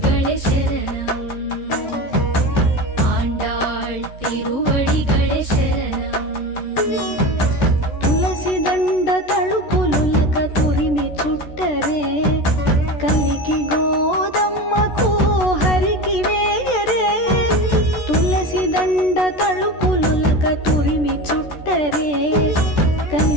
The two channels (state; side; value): late; right; 14 ms